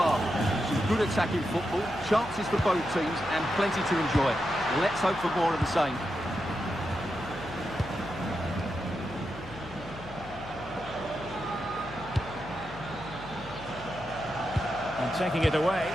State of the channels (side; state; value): left; noise; hum, 17 dB below the sound